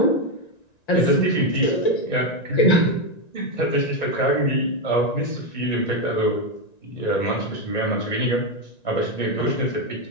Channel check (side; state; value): right; late; 1.9 ms